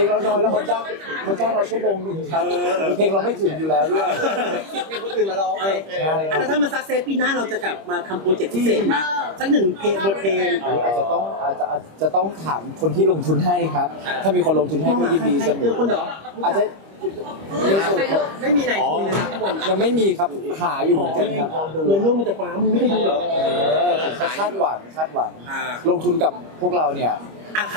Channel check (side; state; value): left; late; 25 ms